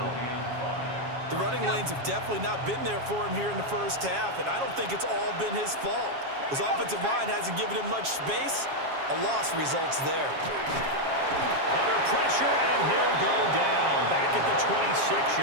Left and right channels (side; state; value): left; late; 7.3 ms